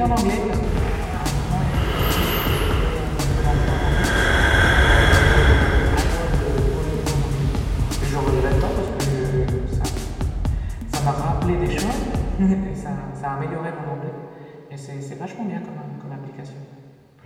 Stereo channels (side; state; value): both; identical; correlation 1.00